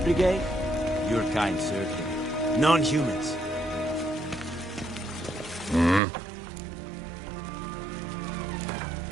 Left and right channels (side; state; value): left; drops out; at 6.0 s